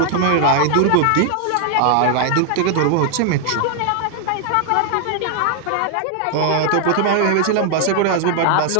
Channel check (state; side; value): different; both; correlation 0.00